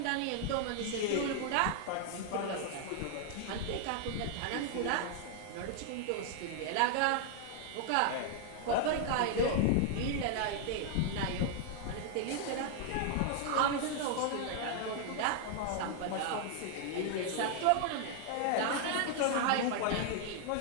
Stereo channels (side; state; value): both; different; correlation 0.00